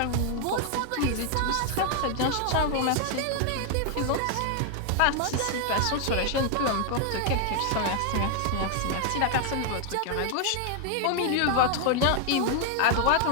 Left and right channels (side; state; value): both; different; correlation 0.00